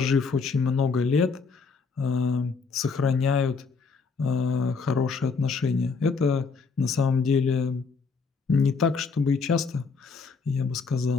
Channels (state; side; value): quieter; right; 4.8 dB